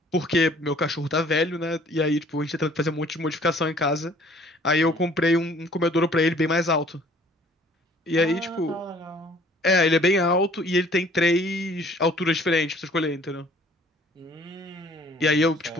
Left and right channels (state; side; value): normal; both; correlation 0.55